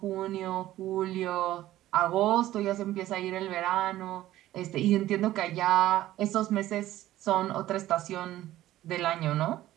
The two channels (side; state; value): left; quieter; 14.6 dB